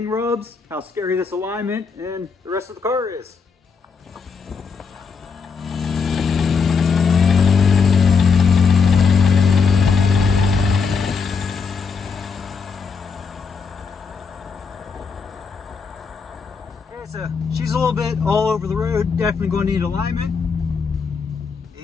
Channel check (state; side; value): quieter; right; 5.3 dB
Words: rubs, how scary this alignment and the rest of the car is. Alright, so she's a little bit all over the road, definitely going to need alignment.